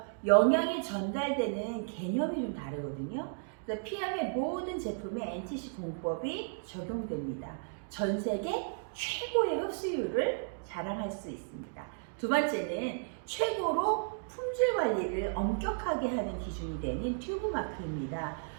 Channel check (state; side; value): silent; left; digital silence